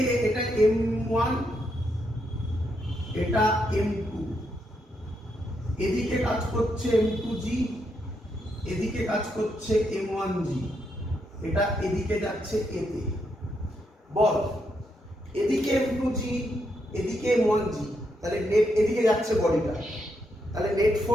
এটা m1, এটা m2, এদিকে কাজ করছে m2g, এদিকে কাজ করছে m1g, এটা এদিকে যাচ্ছে a তে। বল এদিকে m2g, এদিকে m1g, তাহলে নেট এদিকে যাচ্ছে বডিটা, তাহলে নেট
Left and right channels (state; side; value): normal; both; correlation 0.79